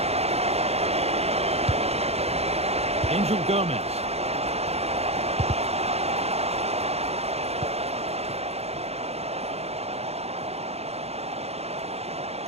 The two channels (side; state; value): left; late; 0.30 ms